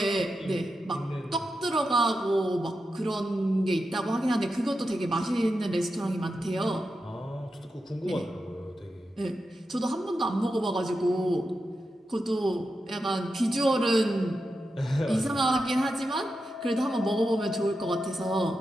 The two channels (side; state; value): both; normal; correlation 0.89